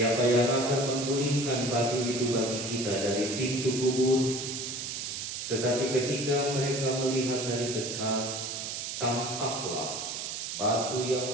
yang akan menggulingkan batu itu bagi kita dari pintu kubur?" Tetapi ketika mereka melihat dari dekat, tampaklah batu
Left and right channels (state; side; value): noise; right; hiss, 5 dB below the sound